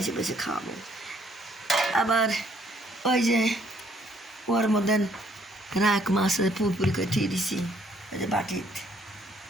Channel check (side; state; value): both; normal; correlation 0.66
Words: বাসে খাওয়াবো। আবার ওই যে ওর মধ্যে রাখ মাছ পুরপুরি করে থুয়ে দিছি, ওই যে